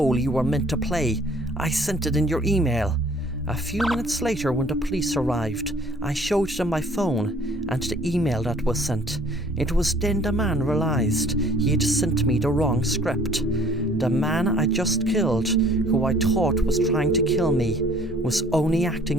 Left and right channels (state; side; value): normal; both; correlation 0.55